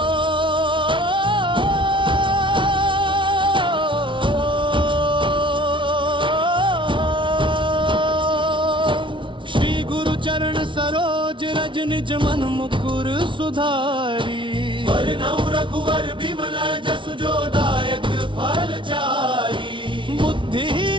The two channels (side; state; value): left; late; 0.24 ms